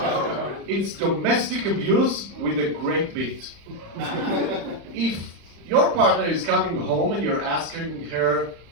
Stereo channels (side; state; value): left; late; 35 ms